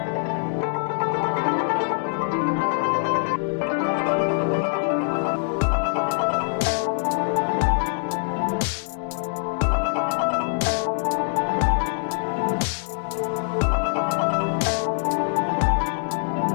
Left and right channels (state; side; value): silent; right; 59 dB below the other